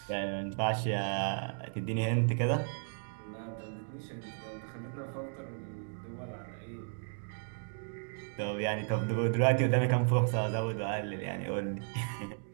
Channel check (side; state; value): left; silent; 55 dB below the other